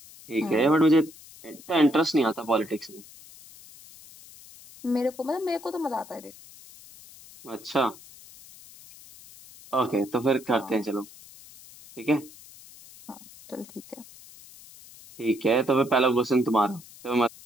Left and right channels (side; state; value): left; noise; hiss, 20 dB below the sound